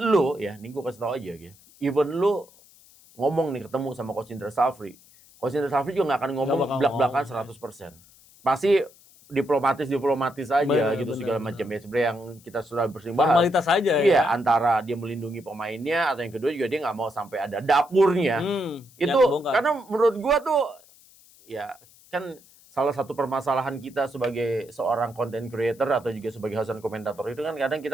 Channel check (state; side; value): noise; left; hiss, 26 dB below the sound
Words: ya, ini gua kasih tahu aja ya. Even lu ngomong nih ketemu sama Coach Indra Safri. Coach Indra Safri juga nggak akan ngomong belak-belakan 100%. Pasti diplomatis aja gitu segala macam ya, sebenarnya yang kita sudah bersering bahas. Formalitas aja ya. Antara dia melindungi pemainnya atau yang kedua juga dia nggak mau sampai ada dapurnya. Itu karena menurut gua tuh ya kan salah satu permasalahan kita sebagai seorang content creator atau juga sebagai host dan komentator itu kan kadang